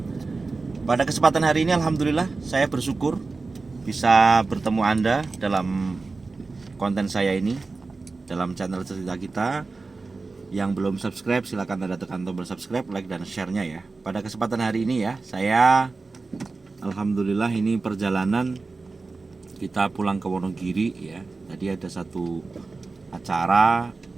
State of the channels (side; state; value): left; quieter; 3.8 dB